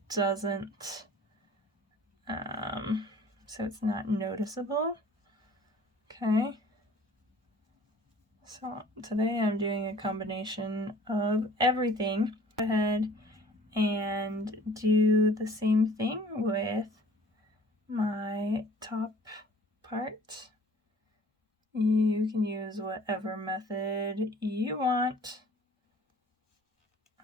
doesn't, so it's not noticeable. Okay. So today I'm doing a combination of everything. Go ahead and do the same thing with my top part. You can use whatever method you want.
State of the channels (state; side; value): normal; both; correlation 0.51